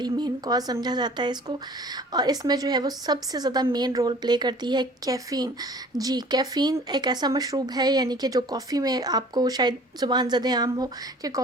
मेन कॉज़ समझा जाता है इसको। और इसमें जो है वो सबसे ज़्यादा मेन रोल प्ले करती है कैफ़ीन। जी, कैफ़ीन एक ऐसा मशरूब है, यानी कि जो कॉफ़ी में आपको शायद ज़ुबान ज़द आम हो कि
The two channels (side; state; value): both; normal; correlation 0.49